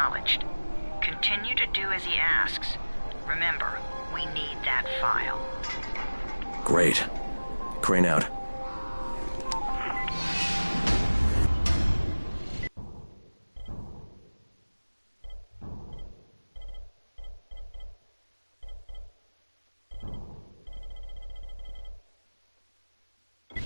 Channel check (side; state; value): both; inverted; correlation -1.00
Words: Continue to do as he asks. Remember, we need that file. Great. Crane out.